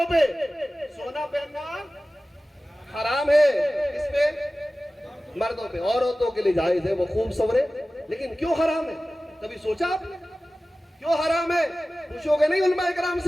پہ، سونا پہننا حرام ہے، اس پہ مردوں پہ، عورتوں کے لیے جائز ہے، وہ خوب سورے، لیکن کیوں حرام ہے؟ کبھی سوچا آپ نے کیوں حرام ہے؟ پوچھو گے نہیں علماء کرام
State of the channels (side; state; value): both; normal; correlation 0.96